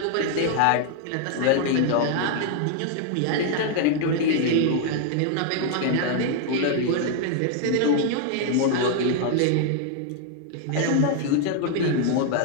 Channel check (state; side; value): different; both; correlation 0.00